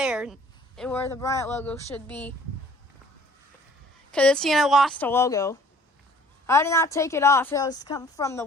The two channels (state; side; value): normal; both; correlation 0.54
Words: where the Bryant logo should be. Because this unit lost a logo. I did not take it off. It was coming from the